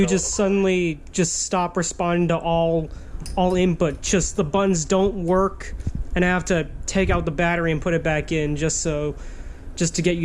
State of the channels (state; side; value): identical; both; correlation 1.00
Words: just suddenly just stop responding to all input. Just the buttons don't work, and I have to take out the battery and put it back in just to get